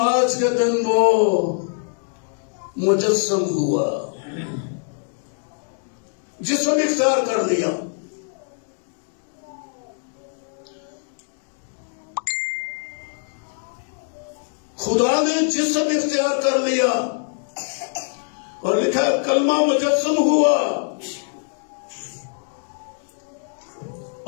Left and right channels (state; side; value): silent; right; digital silence